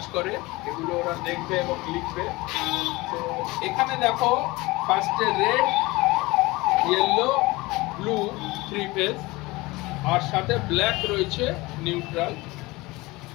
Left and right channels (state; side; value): quieter; right; 21.8 dB